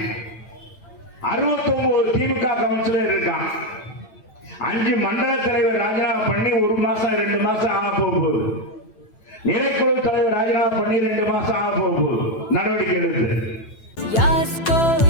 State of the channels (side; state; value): right; late; 9.0 ms